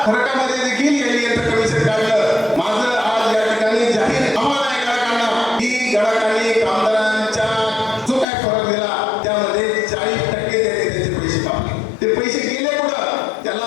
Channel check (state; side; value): drops out; right; at 8.2 s